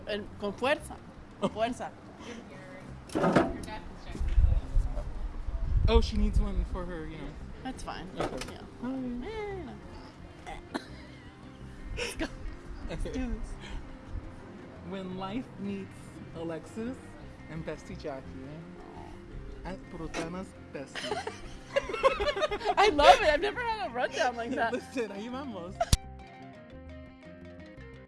And con fuerza. Con fuerza. Oh, she needs one for her, you know. That's fine. Okay. Yeah. Hi. Eh, no. Let's go. Let's do this. When life meets Alexis and Bestie Jackie, at Brutana's bestie. I love it. I've never had a rundown like that. Listen, ahí vamos.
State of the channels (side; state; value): both; identical; correlation 1.00